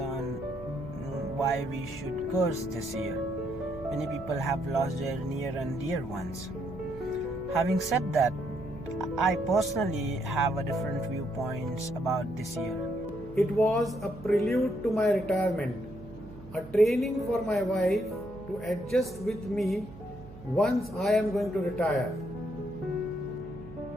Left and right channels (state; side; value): noise; right; hum, 17 dB below the sound